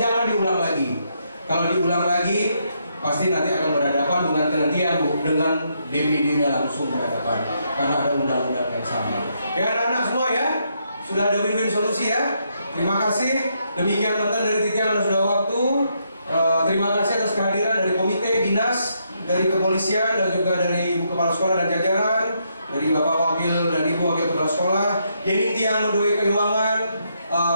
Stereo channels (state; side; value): inverted; both; correlation -0.77